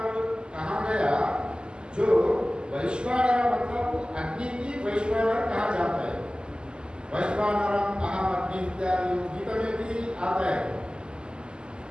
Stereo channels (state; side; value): late; left; 0.048 ms